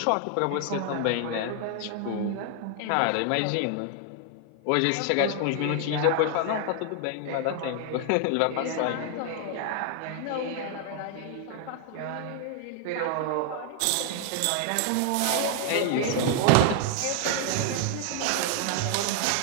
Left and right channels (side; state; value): both; different; correlation 0.00